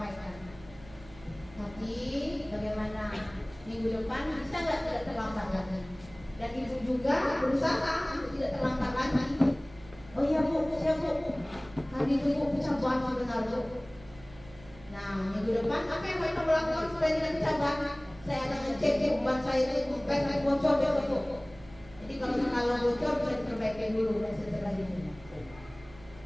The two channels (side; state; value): right; noise; hum, 21 dB below the sound